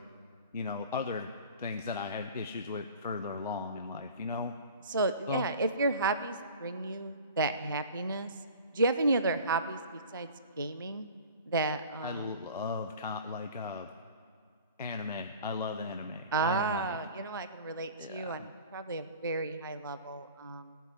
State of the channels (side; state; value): both; inverted; correlation -0.43